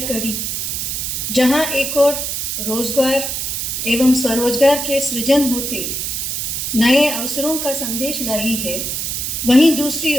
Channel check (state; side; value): noise; right; hiss, 2 dB below the sound